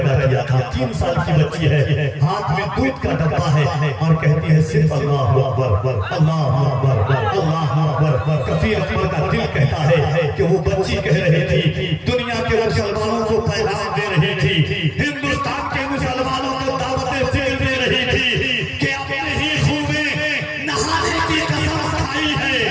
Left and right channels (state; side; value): identical; both; correlation 1.00